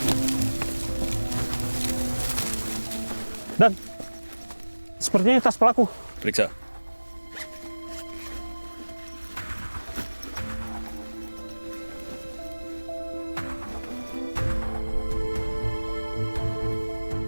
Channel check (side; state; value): both; inverted; correlation -1.00